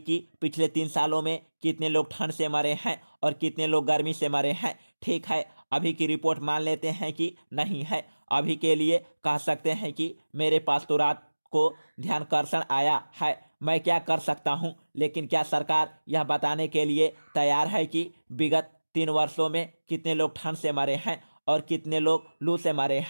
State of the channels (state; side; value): inverted; both; correlation -1.00